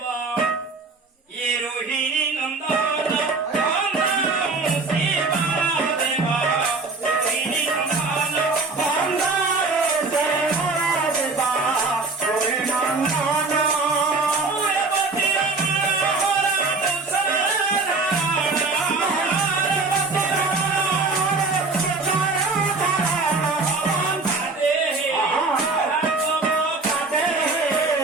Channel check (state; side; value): quieter; left; 3.8 dB